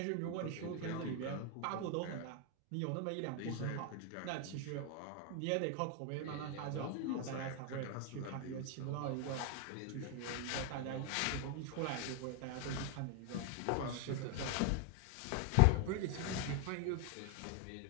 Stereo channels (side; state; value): both; different; correlation 0.00